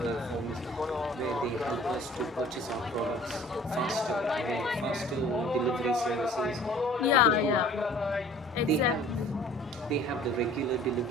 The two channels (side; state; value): both; normal; correlation 0.50